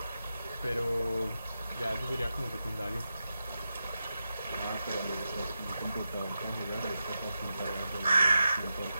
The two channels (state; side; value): inverted; both; correlation -0.90